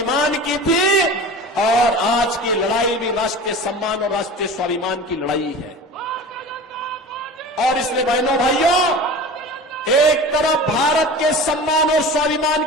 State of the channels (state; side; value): normal; both; correlation 0.36